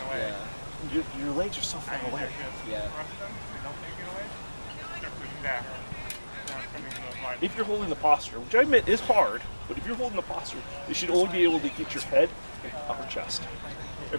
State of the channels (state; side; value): inverted; both; correlation -1.00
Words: Yeah. your legs are so far away. Yeah. If you're holding the posture, which I admit is hard, but if you're holding the posture, you should only be able to get your head and upper chest.